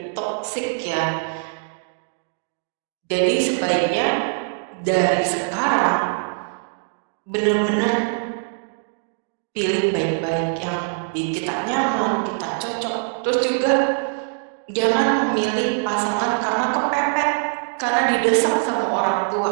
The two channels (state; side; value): silent; left; 64 dB below the other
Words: toksik ya. Jadi sebaiknya dari sekarang benar-benar pilih baik-baik yang bikin kita nyaman, kita cocok. Terus juga jangan memilih pasangan karena kepepet, karena didesak sama orang tua.